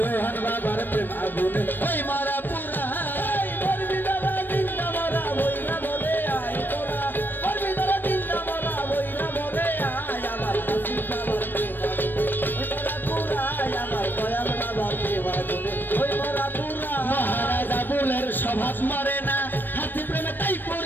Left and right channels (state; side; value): late; right; 0.093 ms